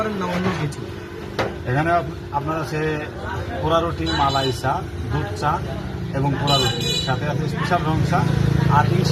না অন্য কিছু? এখানে আপনার আছে পোড়া রুটি, মালাই চা, দুধ চা এবং পোড়া রুটি, সাথে আছে স্পেশাল রং চা। আর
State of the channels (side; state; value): both; identical; correlation 1.00